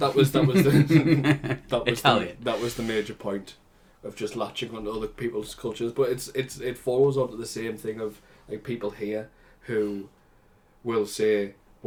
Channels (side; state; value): both; identical; correlation 1.00